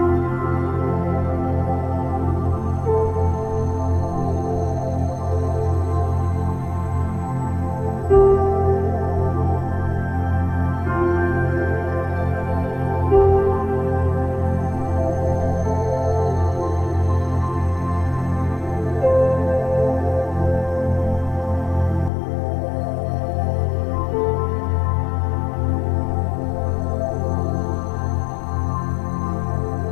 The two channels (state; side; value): drops out; right; at 22.1 s